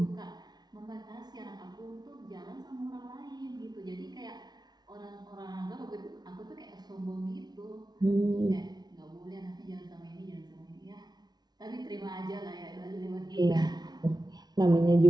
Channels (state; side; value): late; left; 0.19 ms